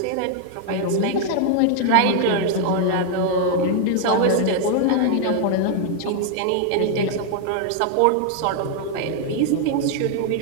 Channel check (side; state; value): both; different; correlation 0.00